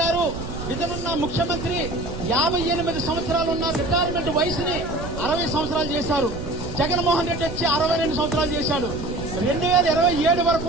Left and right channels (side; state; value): right; noise; rumble, 9 dB below the sound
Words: గారు ఇతనున్న ముఖ్యమంత్రి 58 సంవత్సరాలు ఉన్న రిటైర్మెంట్ వయసుని 60 సంవత్సరాలు చేశారు. జగన్మోహన్ రెడ్డి వచ్చి 62 సంవత్సరాలు చేశాడు. 2027 వరకు